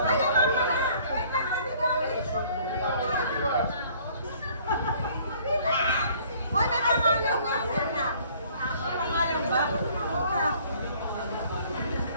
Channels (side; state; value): both; inverted; correlation -0.56